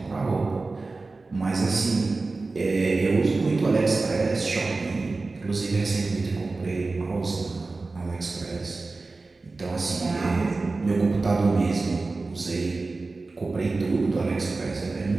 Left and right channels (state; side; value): quieter; left; 3.6 dB